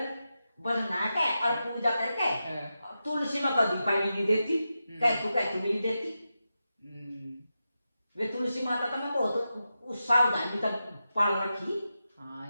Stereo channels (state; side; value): inverted; both; correlation -0.90